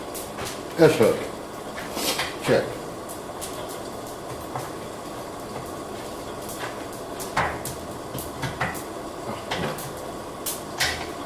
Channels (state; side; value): identical; both; correlation 1.00